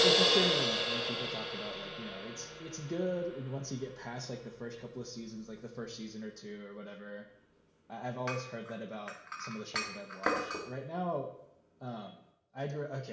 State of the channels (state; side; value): identical; both; correlation 1.00